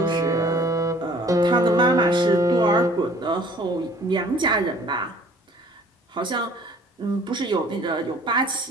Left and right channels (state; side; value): normal; both; correlation 0.53